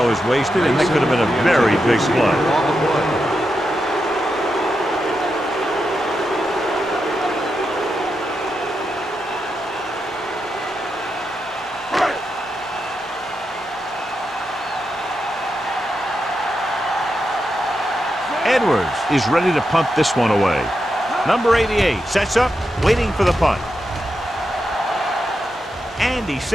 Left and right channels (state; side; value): normal; both; correlation 0.86